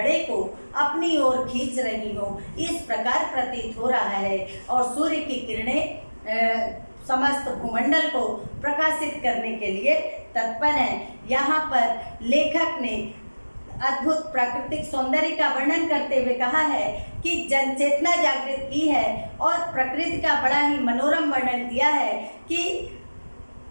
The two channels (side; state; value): both; inverted; correlation -1.00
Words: को अपनी ओर खींच रही हो, इस प्रकार प्रतीत हो रहा है। और सूर्य की किरणें समस्त भूमंडल को प्रकाशित करने के लिए तत्पर हैं। यहाँ पर लेखक ने अद्भुत प्राकृतिक सौंदर्य का वर्णन करते हुए कहा है कि जनचेतना जागृत की है, और प्रकृति का बड़ा ही मनोरम वर्णन किया है कि